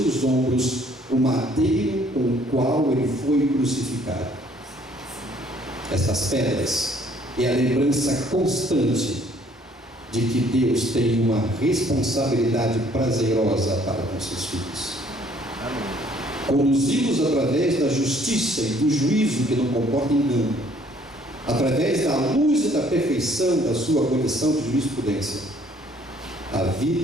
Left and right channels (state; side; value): normal; both; correlation 0.61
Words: ombros o madeiro com o qual ele foi crucificado. Essas pedras é a lembrança constante de que Deus tem uma responsabilidade prazerosa para com seus filhos. Conduzi-los através da justiça e do juízo que não comporta engano, através da luz e da perfeição da sua condição de jurisprudência, a